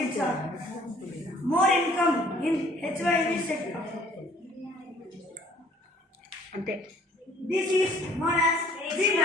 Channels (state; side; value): normal; both; correlation 0.57